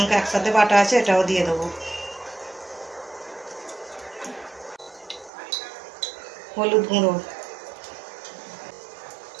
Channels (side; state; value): left; drops out; at 5.3 s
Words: एकसाथे बाटा आछे एटाओ दिए देब, हलुद गुঁড়ো,